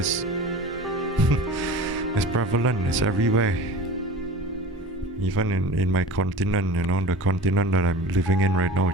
it's prevalent. It's everywhere. Even in my continent, the continent that I'm living in right now,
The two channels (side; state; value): both; normal; correlation 0.37